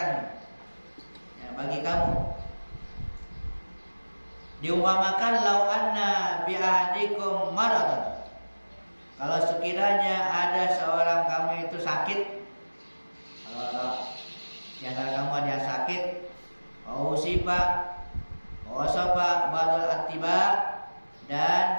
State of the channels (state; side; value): inverted; both; correlation -1.00